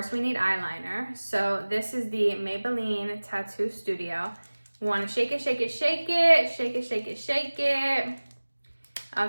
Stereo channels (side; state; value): both; inverted; correlation -1.00